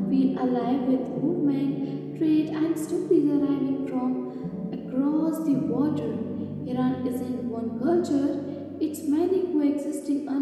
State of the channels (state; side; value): identical; both; correlation 1.00